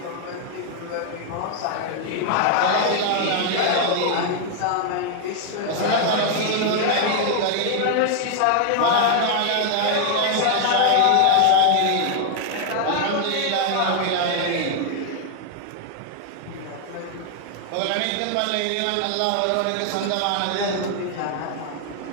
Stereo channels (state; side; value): different; both; correlation 0.00